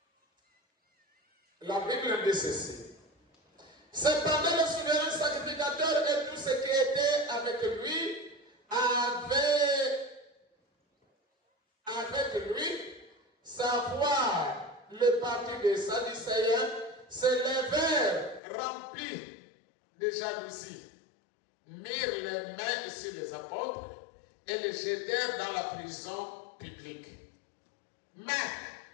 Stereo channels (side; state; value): right; drops out; at 18.4 s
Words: La Bible dit ceci. Cependant, le souverain sacrificateur et tous ceux qui étaient avec lui savoir le parti des Sadducéens, se levèrent remplis de jalousie, mirent les mains sur les apôtres et les jetèrent dans la prison publique. Mais